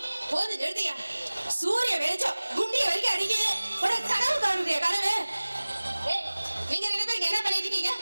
போது நிறுத்தியா சூரிய வெளிச்சம் குண்டிய வரைக்கும் அடிக்குது ஒரு கனவு காணுறிய கனவு. நீங்க ரெண்டு பேருக்கு என்ன பண்ணிட்டு இருக்கீங்க?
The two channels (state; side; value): inverted; both; correlation -1.00